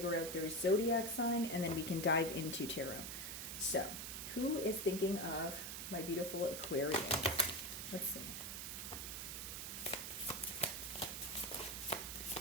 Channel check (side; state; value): right; noise; hiss, 5 dB below the sound